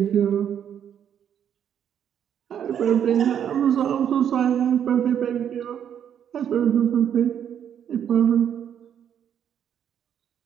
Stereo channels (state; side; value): quieter; left; 9.0 dB